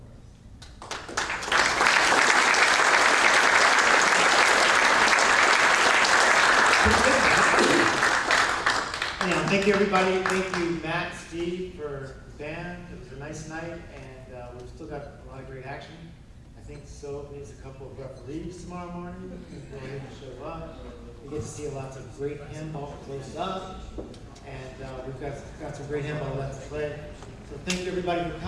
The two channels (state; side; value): identical; both; correlation 1.00